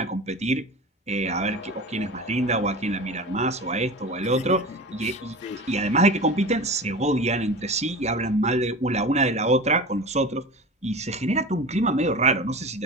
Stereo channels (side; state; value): both; normal; correlation 0.32